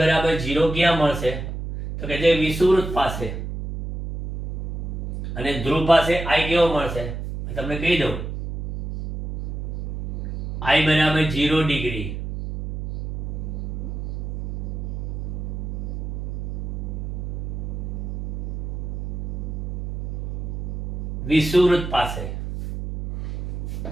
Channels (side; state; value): right; noise; hum, 4 dB below the sound